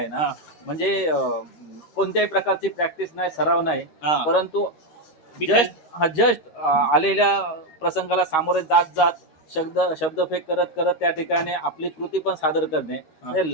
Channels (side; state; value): right; late; 13 ms